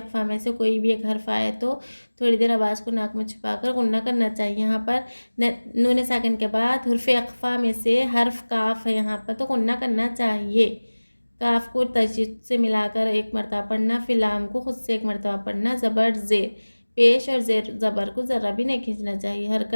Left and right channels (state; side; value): inverted; both; correlation -1.00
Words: में से कोई भी एक हर्फ आए तो थोड़ी देर आवाज़ को नाक में छुपाकर गुन्ना करना चाहिए। यहाँ पर नून साकिन के बाद हुर्फ़ अक़फ़ा में से हर्फ काफ है यहाँ पर, तो गुन्ना करना चाहिए। काफ को तशदीद से मिलाकर एक मरतबा पढ़ना, फिर लाम को खुद से एक मरतबा पढ़ना। ज़बर ज़ेर, पेश और ज़ेर ज़बर को ज़रा भी नहीं खींचना चाहिए।